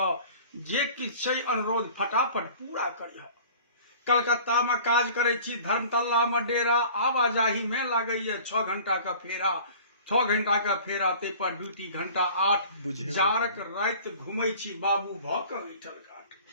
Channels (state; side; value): inverted; both; correlation -0.46